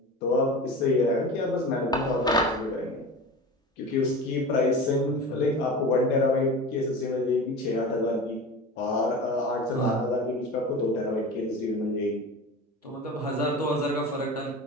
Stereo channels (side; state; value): both; normal; correlation 0.32